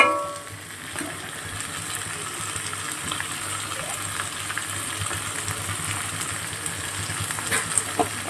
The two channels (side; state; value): both; identical; correlation 1.00